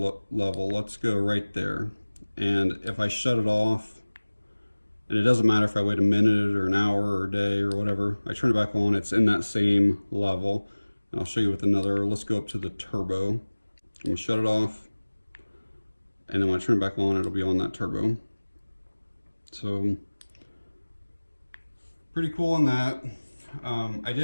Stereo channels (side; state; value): both; inverted; correlation -1.00